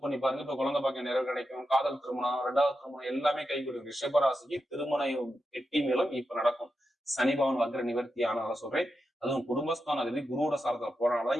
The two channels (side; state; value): both; normal; correlation 0.88